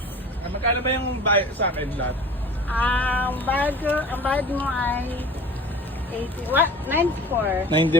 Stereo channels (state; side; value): normal; both; correlation 0.41